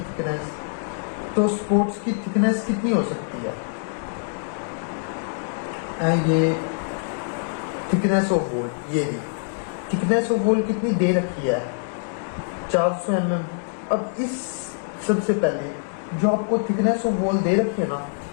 थिकनेस। तो स्पोर्ट्स की थिकनेस कितनी हो सकती है? ये थिकनेस ऑफ वॉल, ये भी थिकनेस ऑफ वॉल कितनी दे रखी है? 400 mm। अब इस सबसे पहले जो आपको थिकनेस ऑफ वॉल दे रखी है ना,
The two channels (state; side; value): silent; right; digital silence